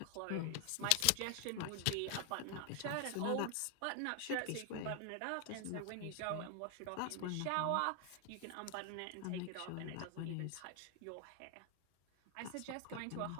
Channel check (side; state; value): both; different; correlation 0.00